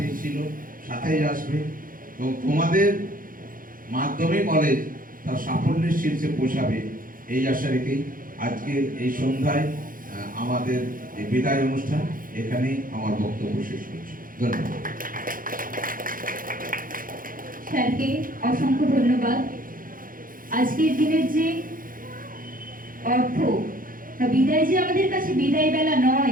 ছিল, সাথেই আসবে, এবং তোমাদের মাধ্যমে কলেজ তার সাফল্যের শীর্ষে পৌঁছাবে, এই আশা রেখেই আজকের এই সন্ধ্যায় আমাদের এই বিদায় অনুষ্ঠান এখানেই আমার বক্তব্য শেষ করছি। ধন্যবাদ। স্যারকে অসংখ্য ধন্যবাদ। আজকের দিনের যে অর্থ বা বিদায় যে আমাদের কাছে বিদায় বেলা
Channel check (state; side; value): late; left; 0.40 ms